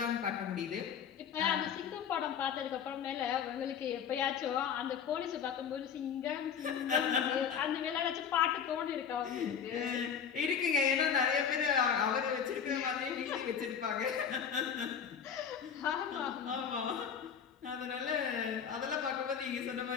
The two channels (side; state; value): right; quieter; 7.5 dB